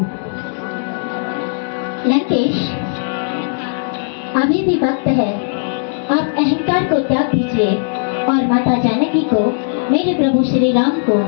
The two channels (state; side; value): silent; right; 67 dB below the other